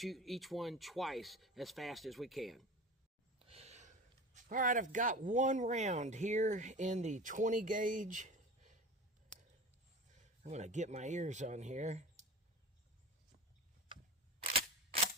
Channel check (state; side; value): normal; both; correlation 0.34